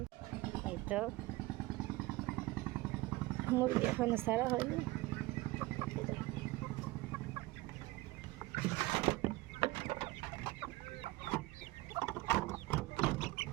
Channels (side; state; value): left; quieter; 20.1 dB